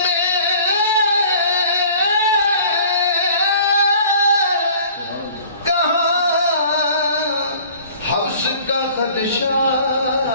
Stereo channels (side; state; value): both; inverted; correlation -0.49